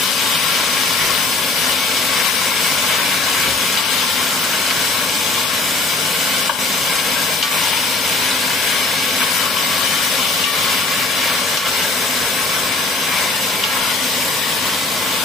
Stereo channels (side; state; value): right; quieter; 3.4 dB